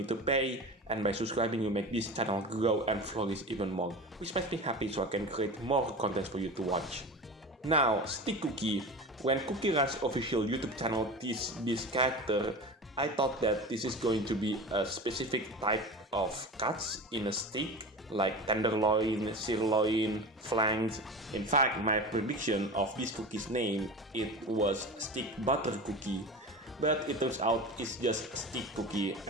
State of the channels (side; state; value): both; normal; correlation 0.30